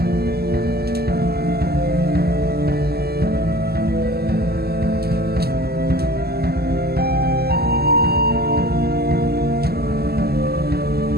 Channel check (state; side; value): late; left; 0.46 ms